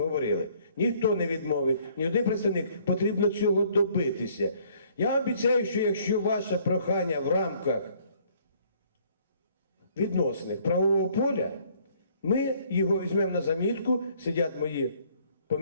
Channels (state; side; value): inverted; both; correlation -0.62